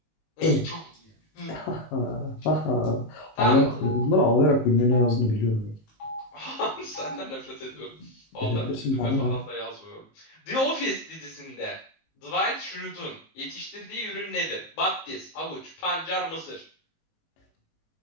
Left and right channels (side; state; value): right; late; 19 ms